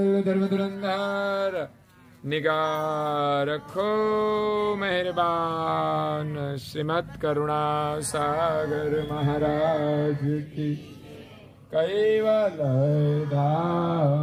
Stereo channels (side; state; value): both; identical; correlation 1.00